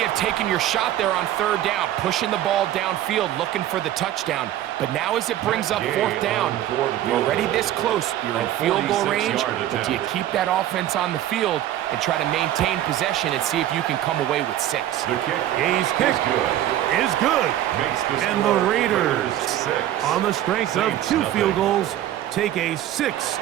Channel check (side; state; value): left; quieter; 12.6 dB